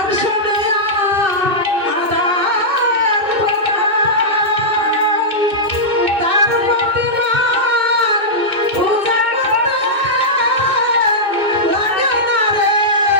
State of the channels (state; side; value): late; left; 2.6 ms